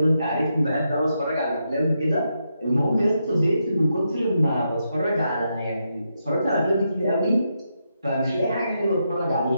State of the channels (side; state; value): both; inverted; correlation -0.83